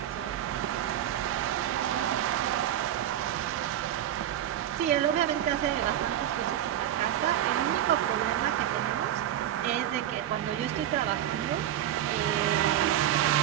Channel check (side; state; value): left; quieter; 11.4 dB